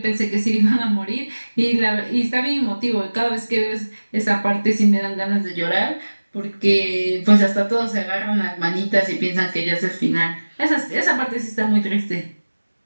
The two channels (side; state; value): both; inverted; correlation -1.00